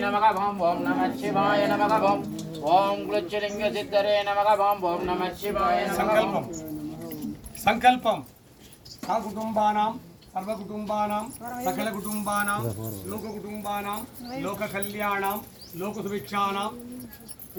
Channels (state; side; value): identical; both; correlation 1.00